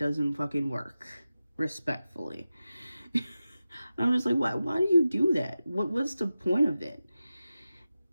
fucking work, respectfully. I'm just like, why do you do that? What's the point of it?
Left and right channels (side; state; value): both; inverted; correlation -0.93